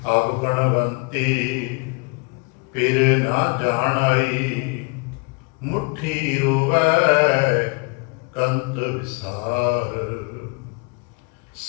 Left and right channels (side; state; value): right; quieter; 31.9 dB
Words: ਆਪ ਗਣਵੰਤੀ ਫਿਰ ਨਾ ਜਾਣਾਈ, ਮੁੱਠੀ ਰੋਵੈ ਕੰਤ ਵਿਸਾਰ।